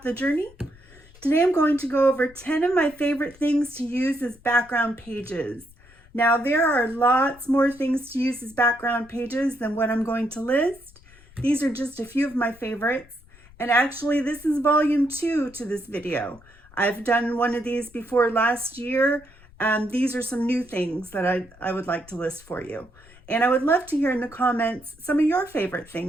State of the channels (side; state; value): left; noise; rumble, 25 dB below the sound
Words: the journey. Today I'm going to go over 10 of my favorite things to use as background pages. Now there are lots more things to use as background pages than what I'm going to list. These are just a few of my favorites, and actually this is volume 2 to this video. I've done one of these before last year, and these are some new things that I would like to list for you. And I would love to hear in the comments some of your favorite